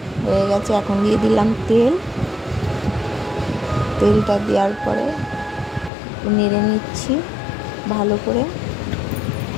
হয়ে গেছে, এখন দিয়ে দিলাম তেল। তেলটা দেওয়ার পরে নেড়ে নিচ্ছি ভালো করে।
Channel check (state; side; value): drops out; right; at 5.9 s